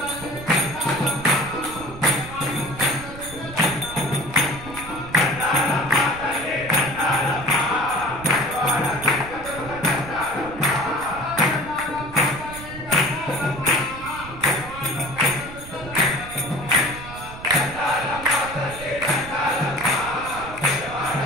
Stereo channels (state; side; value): noise; right; rumble, 14 dB below the sound